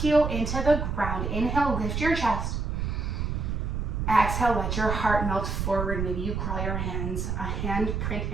into the ground. Inhale, lift your chest. Exhale, let your heart melt forward. Maybe you crawl your hands, a hand print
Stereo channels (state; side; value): noise; right; rumble, 2 dB below the sound